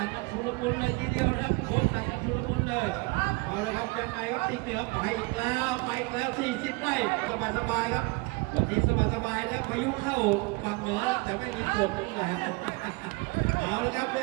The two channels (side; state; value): left; quieter; 25.8 dB